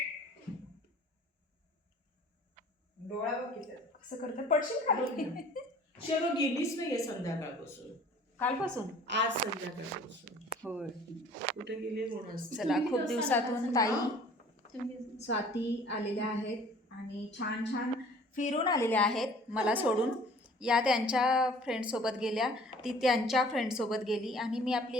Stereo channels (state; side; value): normal; both; correlation 0.51